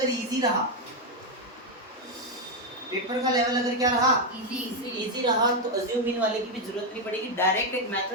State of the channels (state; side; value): normal; both; correlation 0.04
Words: इजी रहा, पेपर का लेवल अगर क्या रहा, इजी रहा, तो अज्यूम मीन वाले की भी जरूरत नहीं पड़ेगी। डायरेक्ट एक